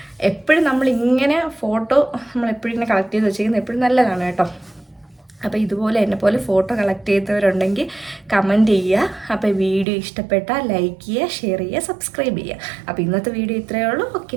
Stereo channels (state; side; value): drops out; left; at 9.9 s